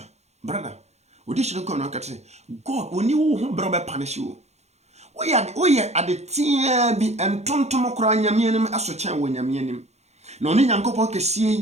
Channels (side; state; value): left; late; 0.32 ms